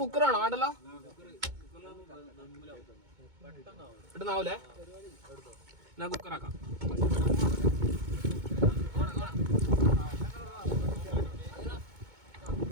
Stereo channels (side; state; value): left; late; 2.2 ms